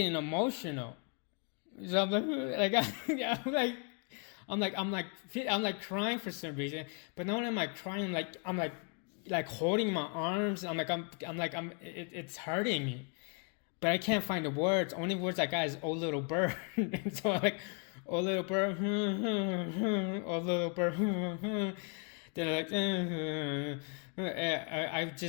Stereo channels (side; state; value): right; quieter; 37.2 dB